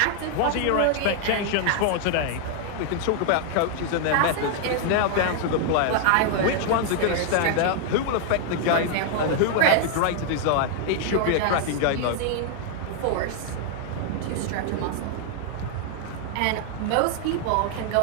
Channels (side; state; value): both; different; correlation 0.00